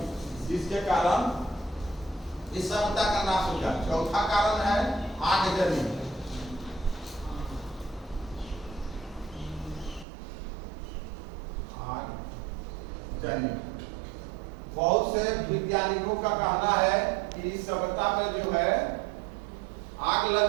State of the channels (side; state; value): left; drops out; at 10.1 s